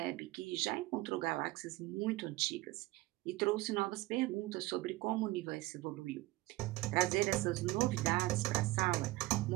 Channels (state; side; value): quieter; left; 19.6 dB